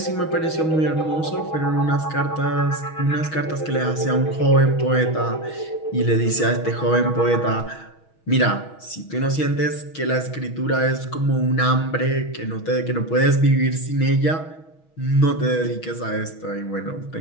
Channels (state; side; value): late; right; 6.3 ms